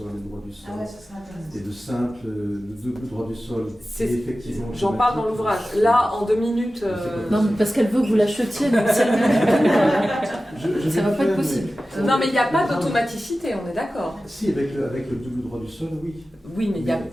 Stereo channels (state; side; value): normal; both; correlation 0.95